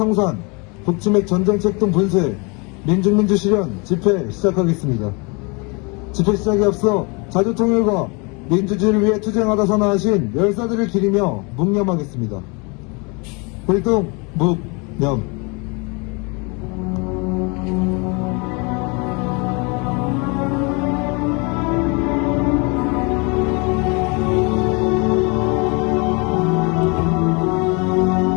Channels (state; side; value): quieter; right; 30.5 dB